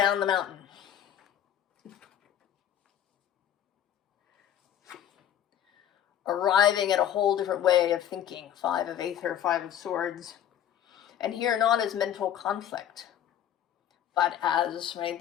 the mountain. Arriving at a whole different way of thinking. 5 of Aether, 5 of Swords. And here not as mental conflict, but as, right,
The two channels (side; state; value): right; quieter; 10.4 dB